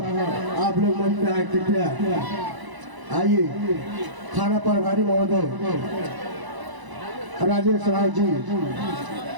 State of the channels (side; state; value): left; late; 1.0 ms